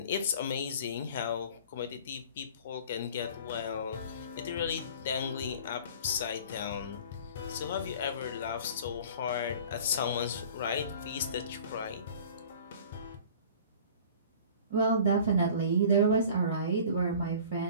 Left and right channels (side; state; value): both; inverted; correlation -0.45